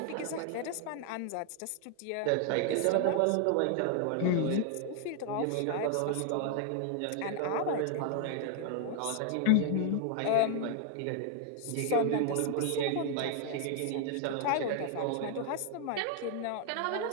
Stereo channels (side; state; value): both; different; correlation 0.00